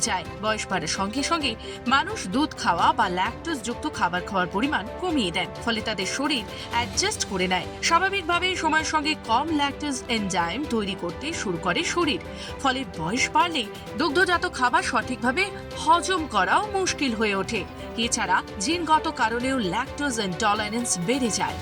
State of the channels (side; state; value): both; identical; correlation 1.00